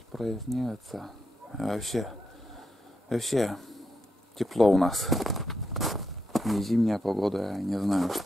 А вообще тепло у нас. Не зимняя погода, я не знаю,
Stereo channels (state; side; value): normal; both; correlation 0.83